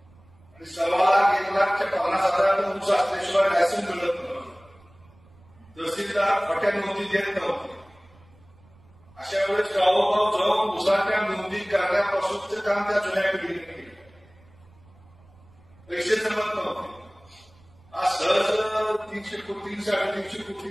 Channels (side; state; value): right; noise; rumble, 28 dB below the sound